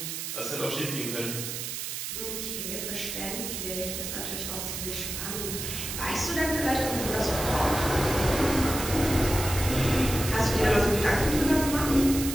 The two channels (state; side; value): noise; right; hiss, 5 dB below the sound